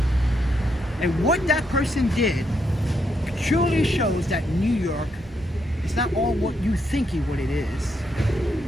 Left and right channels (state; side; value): normal; both; correlation 0.78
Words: And what that person did truly shows that New York is not all what you think what it is.